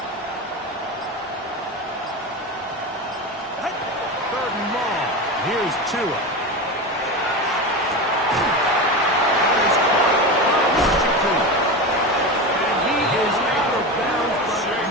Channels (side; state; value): both; normal; correlation 0.23